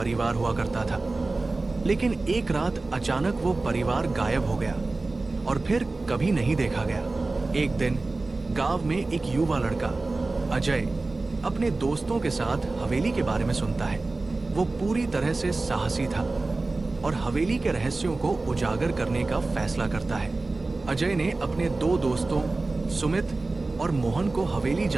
हुआ करता था, लेकिन एक रात अचानक वो परिवार गायब हो गया और फिर कभी नहीं देखा गया। एक दिन गांव में एक युवा लड़का अजय अपने दोस्तों के साथ हवेली के बारे में सुनता है। वो पूरी तरह से साहसी था और हवेली के रहस्यों को उजागर करने का फैसला करता है। अजय ने अपने दो दोस्तों सुमित और मोहन को हवेली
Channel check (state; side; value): quieter; left; 3.4 dB